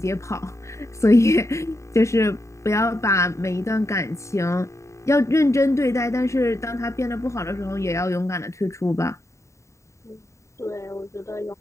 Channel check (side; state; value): right; late; 0.14 ms